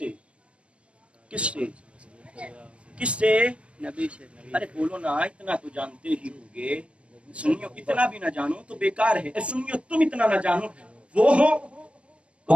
کس سے؟ کس سے؟ ارے بولو نا، اتنا تو جانتے ہی ہوگے. سنیو اتنا بھی نہ جانو تو بیکار ہے. سنیو تم اتنا نہ جانو وہ ہو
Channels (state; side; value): late; left; 0.060 ms